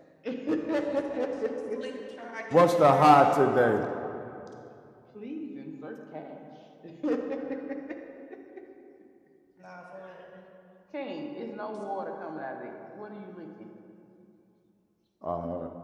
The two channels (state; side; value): identical; both; correlation 1.00